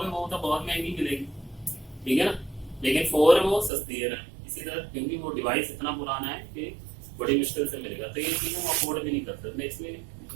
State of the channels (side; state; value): left; drops out; at 3.7 s